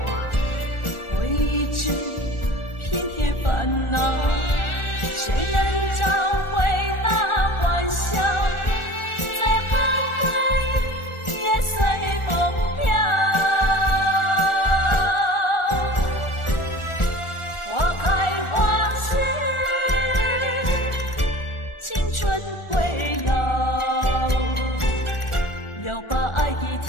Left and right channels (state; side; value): late; right; 1.4 ms